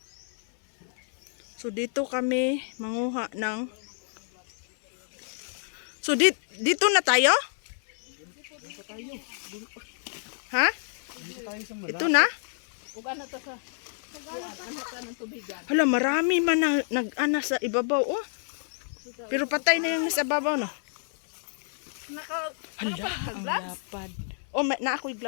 So dito kami manguha ng So dito na tayo? Ha? Ito na? Hala, marami man na nag-ana sa ibabaw oh. Pero patay na yung nasa ibabaw no. Hala, ang lapad. Oh, na ako'y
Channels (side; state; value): right; silent; 59 dB below the other